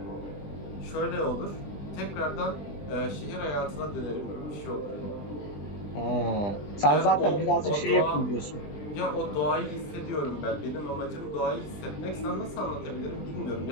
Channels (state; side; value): late; right; 20 ms